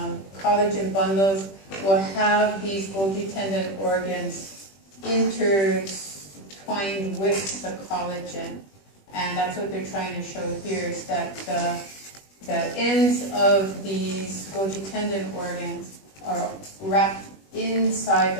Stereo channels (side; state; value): right; late; 21 ms